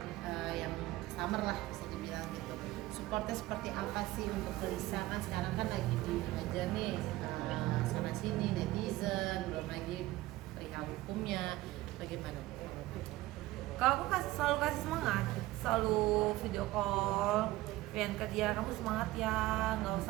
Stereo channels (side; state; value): left; quieter; 17.6 dB